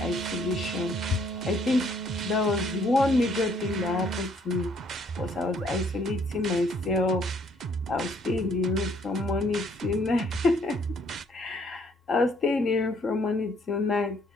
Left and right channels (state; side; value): normal; both; correlation 0.64